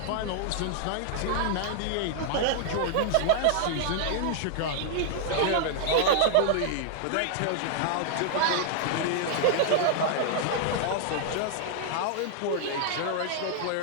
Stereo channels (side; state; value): both; different; correlation -0.01